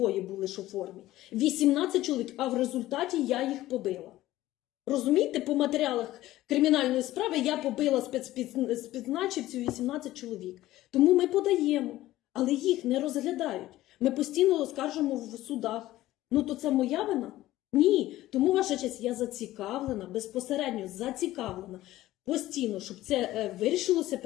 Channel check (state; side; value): quieter; right; 15.6 dB